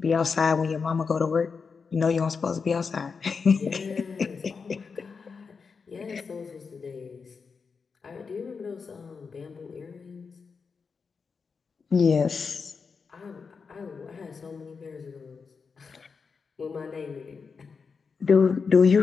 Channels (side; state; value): right; quieter; 5.3 dB